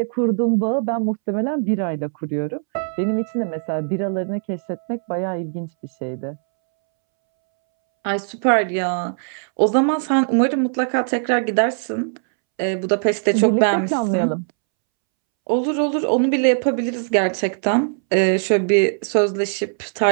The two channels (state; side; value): silent; left; 65 dB below the other